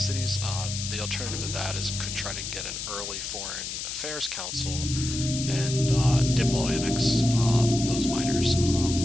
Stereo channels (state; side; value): noise; left; hiss, 6 dB below the sound